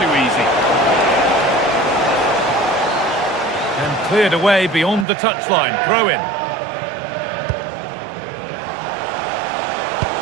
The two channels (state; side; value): drops out; left; at 5.1 s